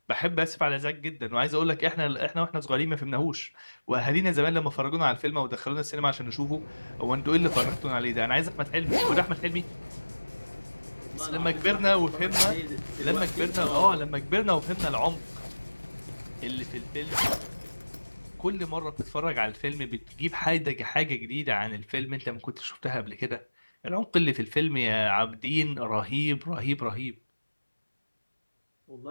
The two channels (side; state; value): both; inverted; correlation -1.00